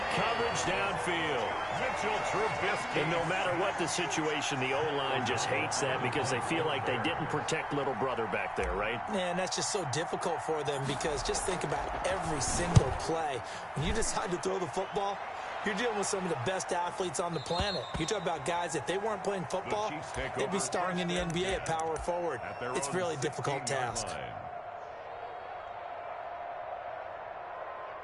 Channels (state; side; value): identical; both; correlation 1.00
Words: coverage downfield. Mitchell Trubisky. And no matter what the situation, the O-line just hates that because they feel like they didn't protect little brother back there, right? Man, that's just so difficult for them because just think about every single play. When you decide to throw the football, you're dealing with some of the best athletes on the planet. You talk about guys, if they weren't playing football, they'd be starring in the NBA at power forward. It's a really difficult task.